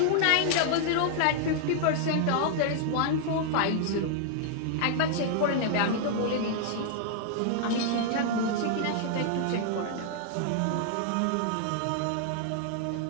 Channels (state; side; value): different; both; correlation -0.01